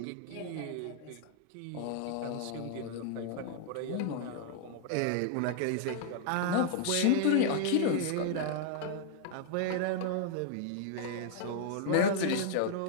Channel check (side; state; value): both; different; correlation -0.01